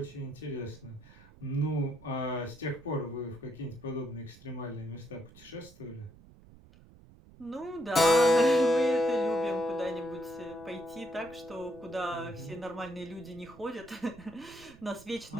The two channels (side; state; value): right; noise; rumble, 22 dB below the sound